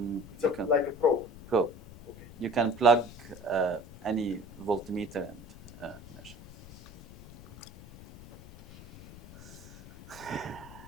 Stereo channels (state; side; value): noise; left; rumble, 18 dB below the sound